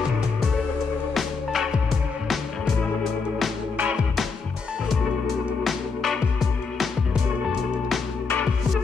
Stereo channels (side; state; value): right; quieter; 4.7 dB